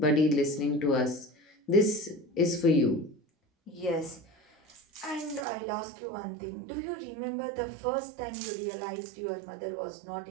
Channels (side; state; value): left; drops out; at 5.5 s